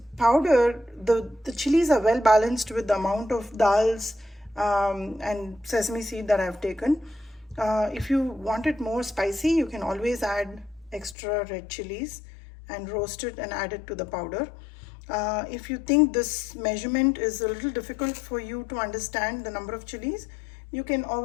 powder, the chilies are well balanced with the amount of dals and sesame seed that I've taken. If you want it more spicy, you can always add extra red chilies and roast it and add it to the powder. If you think this measurement is a little difficult for you to understand the number of chilies, you can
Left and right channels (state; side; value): drops out; right; at 11.2 s